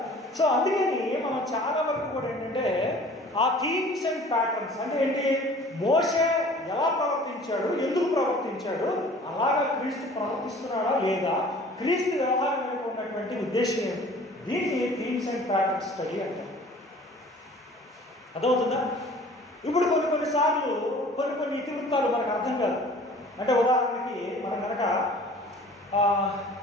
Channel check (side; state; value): both; normal; correlation 0.48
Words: సో అందుకని మనం చాలా వరకు కూడా ఏంటంటే ఆ థీమ్స్ అండ్ ప్యాటర్న్స్ అంటే ఏంటి, మోషే ఎలా ప్రవర్తించాడు, ఎందుకు ప్రవర్తించాడు, అలాగా క్రీస్తు ప్రవర్తిస్తున్నాడా లేదా, క్రీస్తు వ్యవహారం వెనుక ఉన్నటువంటి ఉద్దేశం ఏంటి, దీన్ని థీమ్స్ అండ్ ప్యాటర్న్స్ స్టడీ అంటారు. అదవుతుందా? ఇప్పుడు కొన్నిసార్లు కొన్ని ఇతివృత్తాలు మనకు అర్థం కాదు. అంటే ఉదాహరణకి మనం కనుక